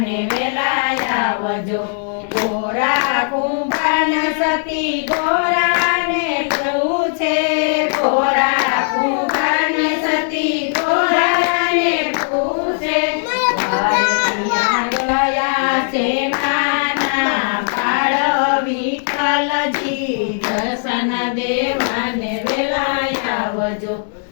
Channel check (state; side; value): silent; right; digital silence